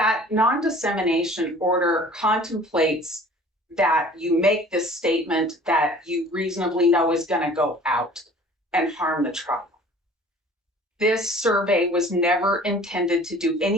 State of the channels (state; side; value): normal; both; correlation 0.48